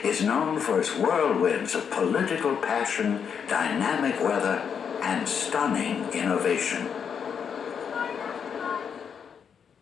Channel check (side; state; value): right; quieter; 7.1 dB